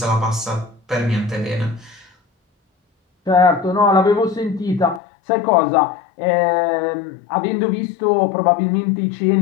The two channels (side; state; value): right; drops out; at 5.0 s